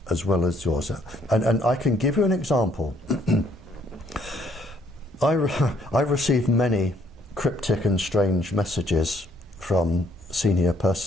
as well as yours. And I can give you an example. I received many cryptic and strange messages from senior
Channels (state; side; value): normal; both; correlation 0.65